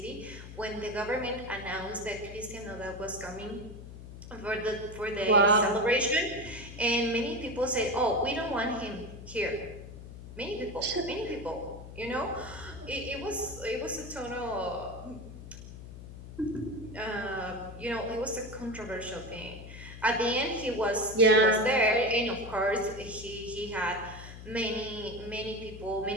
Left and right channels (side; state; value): left; noise; hum, 13 dB below the sound